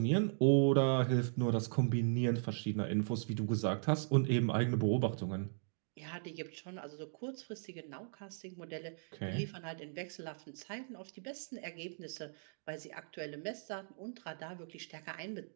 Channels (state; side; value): silent; left; digital silence